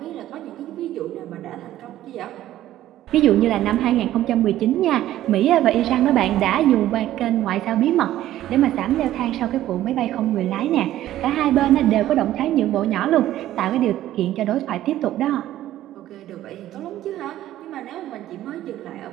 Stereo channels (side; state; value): left; quieter; 13.5 dB